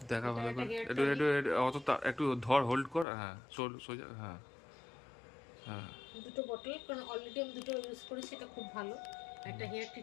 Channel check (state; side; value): drops out; right; at 3.1 s